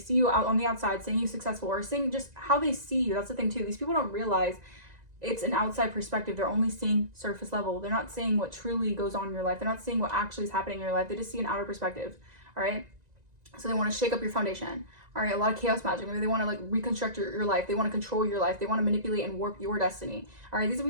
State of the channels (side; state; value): left; late; 1.9 ms